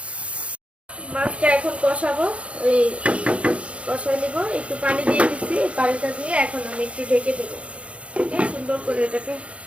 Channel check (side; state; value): left; late; 0.062 ms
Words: মাছটা এখন কষাবো, ওই কষায় নিব, একটু পানি দিয়ে দিচ্ছি, এই পানিটা দিয়ে এখন আমি একটু ঢেকে দেবো। সুন্দর করে এটাকে